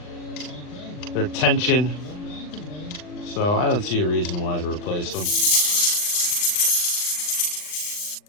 tension. So I don't see a reason why to replace them.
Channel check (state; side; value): late; right; 39 ms